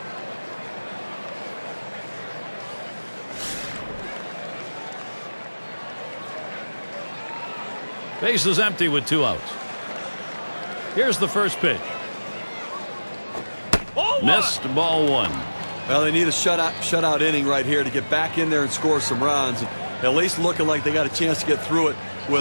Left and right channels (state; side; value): inverted; both; correlation -1.00